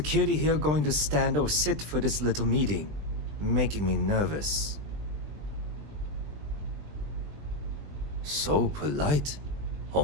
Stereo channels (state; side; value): late; left; 20 ms